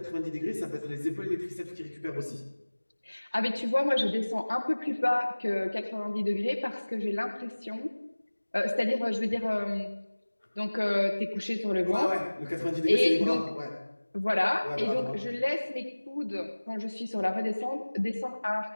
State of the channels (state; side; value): inverted; both; correlation -1.00